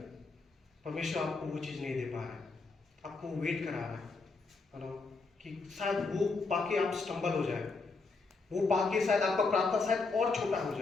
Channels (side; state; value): right; quieter; 4.0 dB